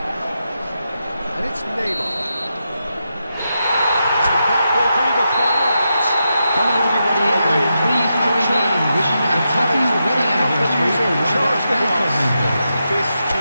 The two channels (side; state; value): both; inverted; correlation -0.86